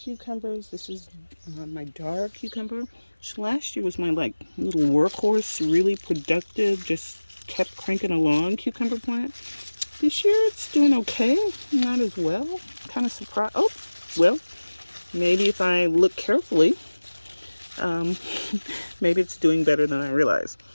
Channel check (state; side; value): inverted; both; correlation -1.00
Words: This is my dark cucumber, which last year was my like little workhorse, really productive, just kept cranking along cucumber plant. This year it's doing okay, not as well. Kind of surprised. Oh, well, maybe if I look carefully, um, maybe it's doing better than I realized.